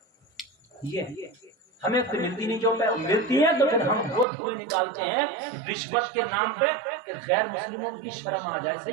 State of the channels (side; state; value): left; drops out; at 4.2 s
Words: یہ ہمیں تو ملتی نہیں، جو ملتی ہے تو پھر ہم وہ دھوئے نکالتے ہیں رشوت کے نام پہ کہ غیر مسلموں کی شرم آ جائے۔